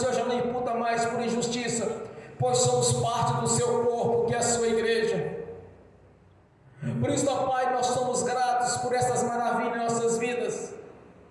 já não imputa mais por injustiça, pois somos parte do Seu corpo, que é a Sua igreja. Por isso, ó Pai, nós somos gratos por essas maravilhas em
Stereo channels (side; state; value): both; identical; correlation 1.00